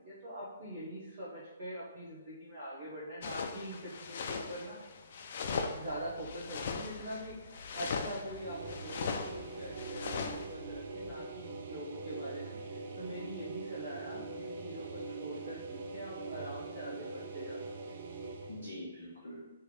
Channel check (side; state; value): both; inverted; correlation -0.61